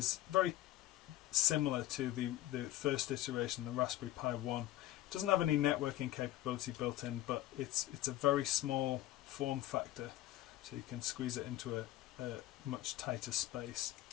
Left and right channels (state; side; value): quieter; right; 15.0 dB